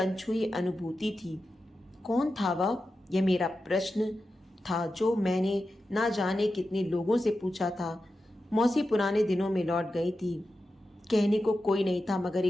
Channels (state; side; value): normal; both; correlation 0.91